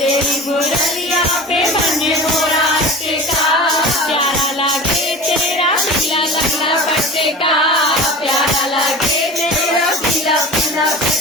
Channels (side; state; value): both; normal; correlation 0.35